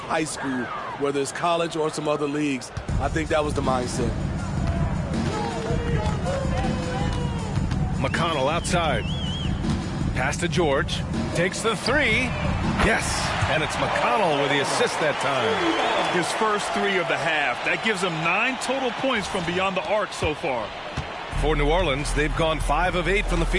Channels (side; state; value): both; identical; correlation 1.00